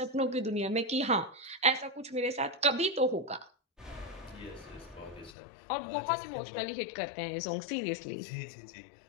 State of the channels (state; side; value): drops out; right; at 5.3 s